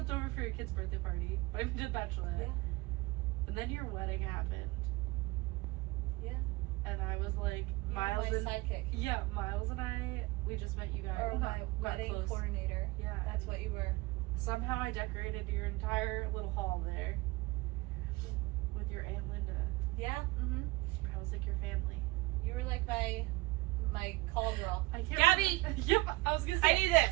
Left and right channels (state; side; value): quieter; left; 21.4 dB